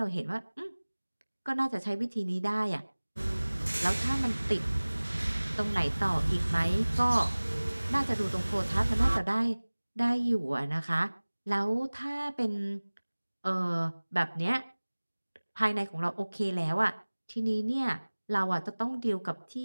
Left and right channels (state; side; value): inverted; both; correlation -1.00